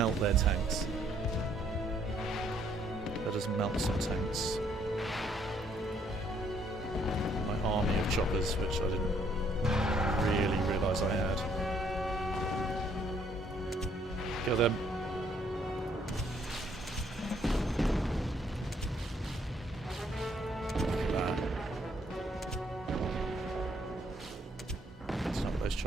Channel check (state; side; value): normal; both; correlation 0.67